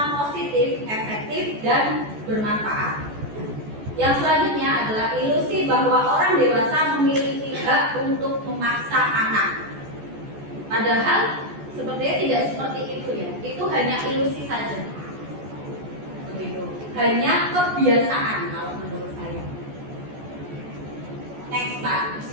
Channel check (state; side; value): late; left; 14 ms